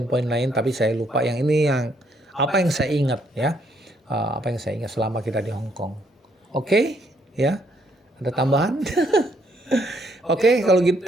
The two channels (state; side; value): normal; both; correlation 0.71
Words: lain tapi saya lupa yang ini yang apa yang saya ingat ya. Apa yang saya ingat selama kita di Hong Kong. Oke, ya. Ada tambahan? Oke, kalau gitu